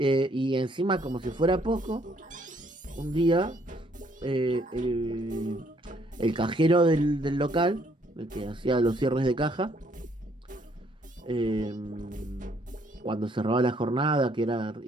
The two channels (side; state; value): both; normal; correlation 0.67